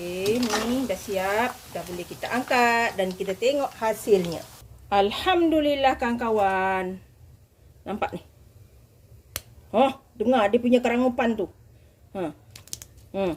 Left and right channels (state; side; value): identical; both; correlation 1.00